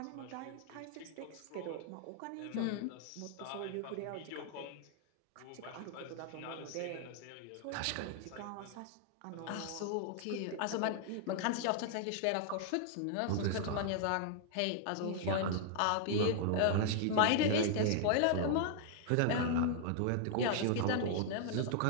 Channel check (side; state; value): both; different; correlation 0.00